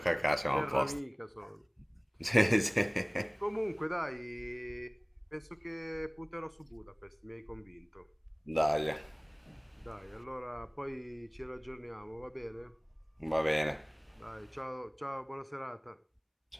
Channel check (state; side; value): identical; both; correlation 1.00